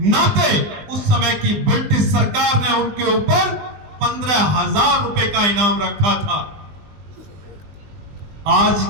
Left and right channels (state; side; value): late; left; 20 ms